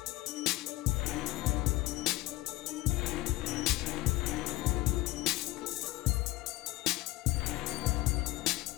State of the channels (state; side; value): quieter; right; 18.7 dB